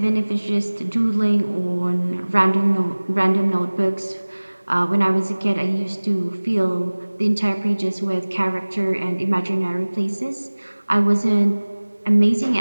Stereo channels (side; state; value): both; inverted; correlation -1.00